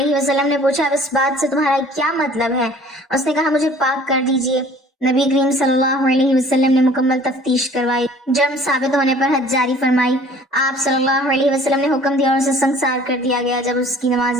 وسلم نے پوچھا، اب اس بات سے تمہارا کیا مطلب ہے؟ اس نے کہا، مجھے پاک کر دیجیے۔ نبی کریم صلی اللہ علیہ وسلم نے مکمل تفتیش کروائی، جرم ثابت ہونے پر حد جاری فرمائی۔ آپ صلی اللہ علیہ وسلم نے حکم دیا اور اسے سنسار کر دیا گیا۔ جب اس کی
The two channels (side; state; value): both; normal; correlation 0.51